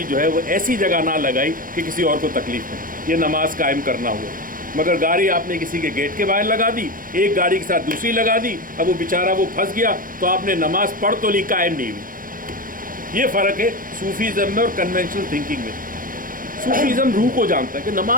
جو ہے وہ ایسی جگہ نہ لگائی کہ کسی اور کو تکلیف ہو، یہ نماز قائم کرنا ہوا. مگر گاڑی آپ نے کسی کے گیٹ کے باہر لگا دی، ایک گاڑی کے ساتھ دوسری لگا دی، اب وہ بیچارہ وہ پھنس گیا، تو آپ نے نماز پڑھ تو لی، قائم نہیں ہوئی. یہ فرق ہے صوفیزم میں اور کنونشنل تھنکنگ میں. صوفیزم روح کو جانتا ہے کہ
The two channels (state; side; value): late; left; 0.40 ms